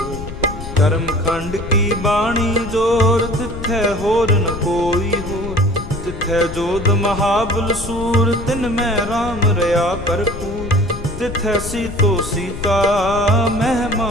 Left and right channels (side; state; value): left; noise; rumble, 10 dB below the sound